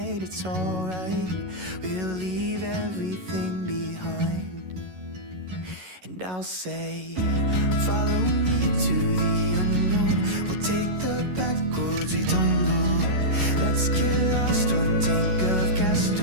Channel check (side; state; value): left; late; 11 ms